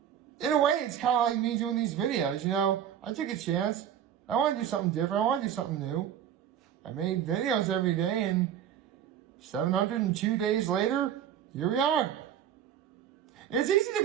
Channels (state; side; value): quieter; left; 9.7 dB